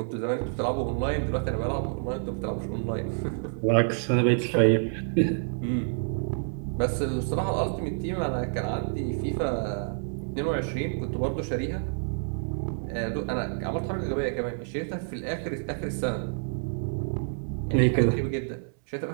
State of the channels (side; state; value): left; silent; 59 dB below the other